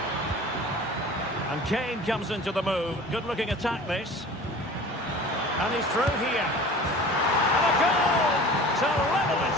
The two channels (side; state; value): both; normal; correlation 0.41